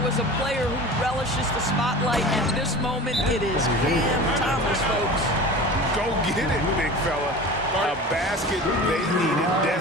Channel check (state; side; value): normal; both; correlation 0.36